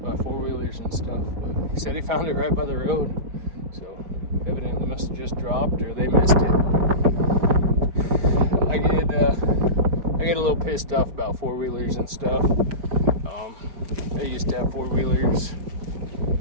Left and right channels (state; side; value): late; left; 5.0 ms